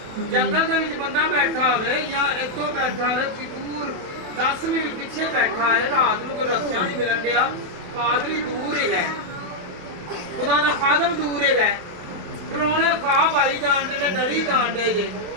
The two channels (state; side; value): late; left; 27 ms